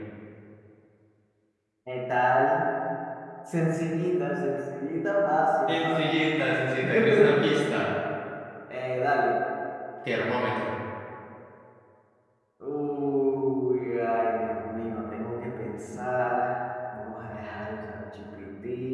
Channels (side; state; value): both; identical; correlation 1.00